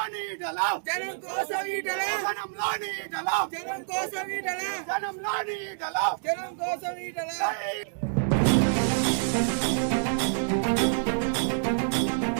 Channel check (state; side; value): silent; left; digital silence